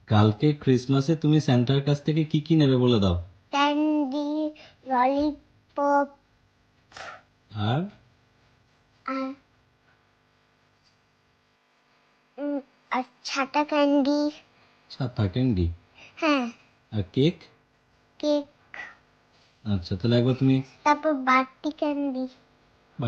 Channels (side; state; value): both; identical; correlation 1.00